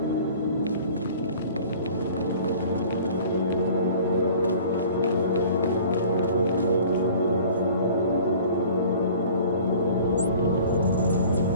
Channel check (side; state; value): both; inverted; correlation -0.47